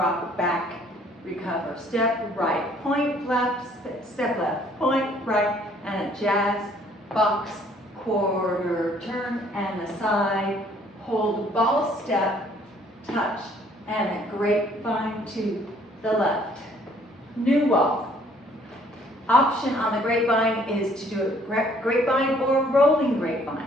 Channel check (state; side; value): normal; both; correlation 0.61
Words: back, recover. Step right, point left, step left, point right, and a jazz box, quarter turn, and the side, hold ball step, touch, and a grapevine to the left. New wall. Option on the grapevine is to do a grapevine or rolling